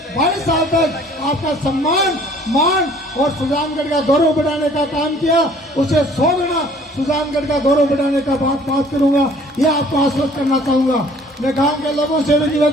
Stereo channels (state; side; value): normal; both; correlation 0.55